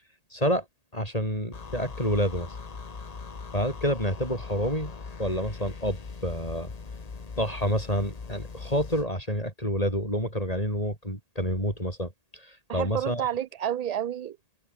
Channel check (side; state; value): right; late; 1.8 ms